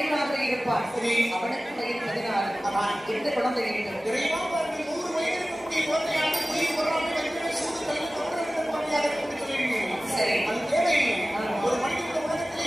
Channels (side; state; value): both; normal; correlation 0.97